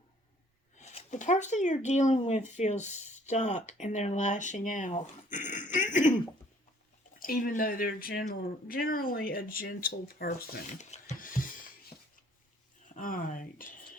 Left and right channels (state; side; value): normal; both; correlation 0.59